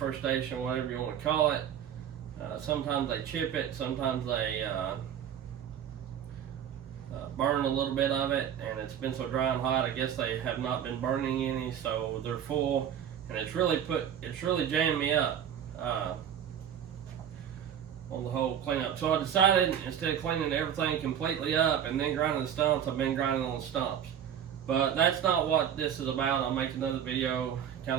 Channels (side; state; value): left; quieter; 9.1 dB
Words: station, whatever you want to call it. Sometimes they chip it, sometimes they burn a little bit of it, and it's been so dry and hot. I guess they have not been burning any, so they're full, and it's really jammed me up on the whole cleanup. So I decided, instead of cleaning everything completely up and then grinding the stumps, I've been grinding on the stumps. But that's not what this is about. I'll make another video